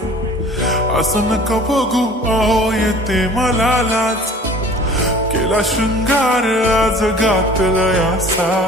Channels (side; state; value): both; normal; correlation 0.47